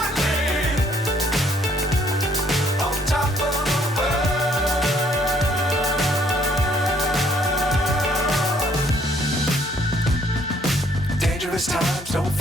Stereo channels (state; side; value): normal; both; correlation 0.64